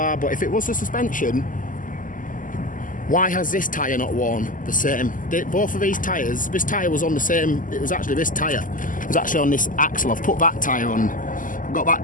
But if it was the suspension, why has this tyre not worn the same? Both of these tyres, this tyre was on the same, it was actually this tyre. It was actually on this axle. I've put that tyre on. I've got that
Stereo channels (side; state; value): right; late; 0.38 ms